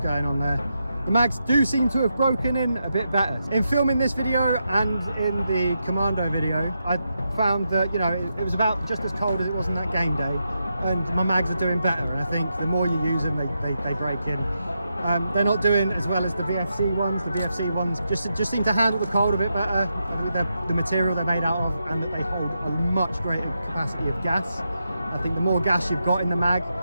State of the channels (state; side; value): inverted; both; correlation -0.85